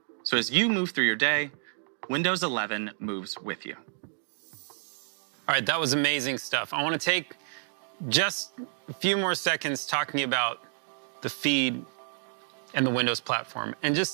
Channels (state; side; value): silent; left; digital silence